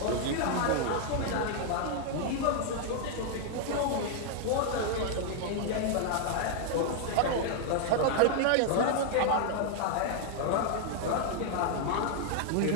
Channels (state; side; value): different; both; correlation 0.00